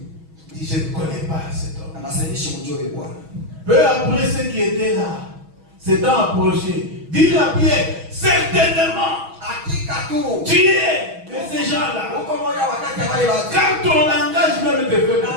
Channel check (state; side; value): late; left; 6.2 ms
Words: Il dit, je ne connais pas cet homme. Anasaidishi mjue Bwana. Peu après ceux qui étaient là, s'étant approchés, dit à Pierre, certainement, Hakika tu. tu es de ces gens-là. Uko moja wakati ya wale watu. Car ton langage même te fait. Na